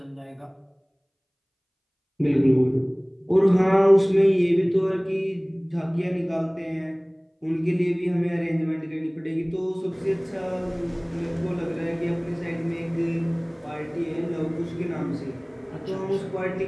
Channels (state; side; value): identical; both; correlation 1.00